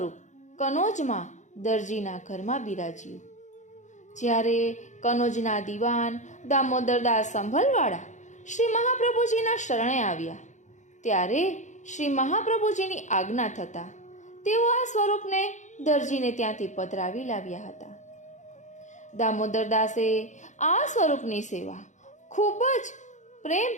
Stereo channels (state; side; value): late; right; 0.35 ms